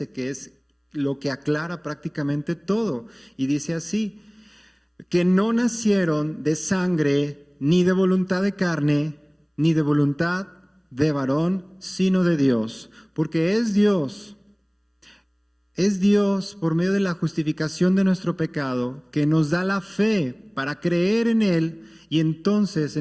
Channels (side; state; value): both; identical; correlation 1.00